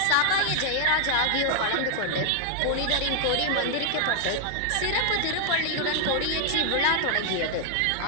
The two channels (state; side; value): different; both; correlation 0.00